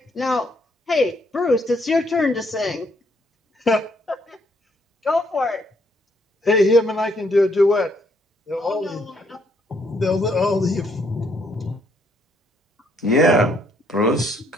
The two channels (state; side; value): normal; both; correlation 0.70